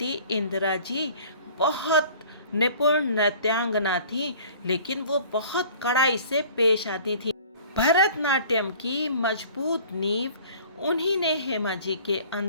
इंदिरा जी बहुत निपुण नृत्यांगना थी, लेकिन वो बहुत कड़ाई से पेश आती थी। भरतनाट्यम की मजबूत नींव उन्हीं ने हेमा जी के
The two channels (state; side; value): inverted; both; correlation -0.48